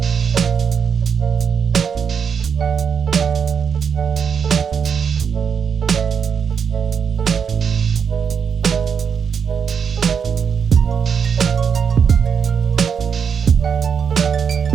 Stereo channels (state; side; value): quieter; left; 6.8 dB